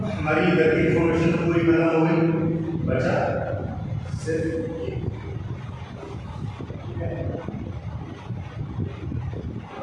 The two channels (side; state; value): both; identical; correlation 1.00